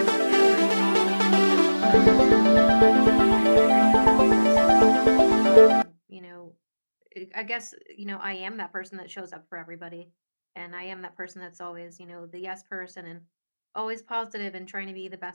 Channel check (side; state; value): both; inverted; correlation -1.00